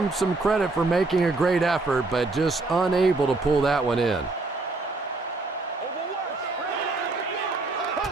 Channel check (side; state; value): left; quieter; 3.4 dB